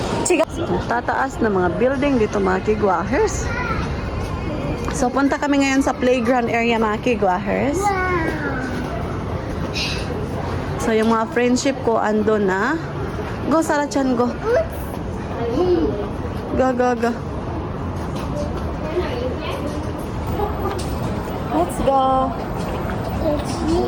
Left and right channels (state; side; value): identical; both; correlation 1.00